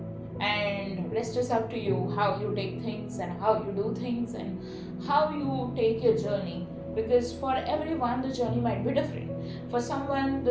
And rest is up to you, how you take things and how you do things and how you take your journey, because for everyone the journey might be different. For someone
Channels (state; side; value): identical; both; correlation 1.00